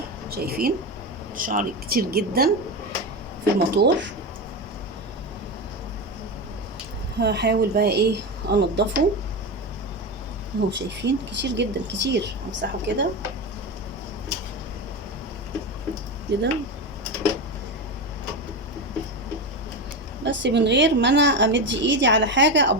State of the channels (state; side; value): normal; both; correlation 0.18